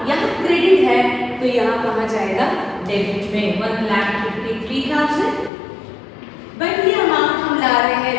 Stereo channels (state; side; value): drops out; right; at 5.5 s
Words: यहाँ क्रेडिट है तो यहाँ कहाँ जाएगा, डेबिट में 1,53,000। बट ये अमाउंट हम ला रहे हैं